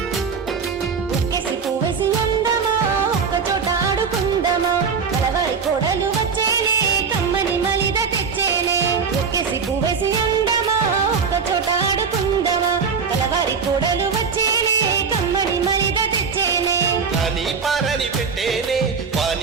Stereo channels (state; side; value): quieter; left; 5.7 dB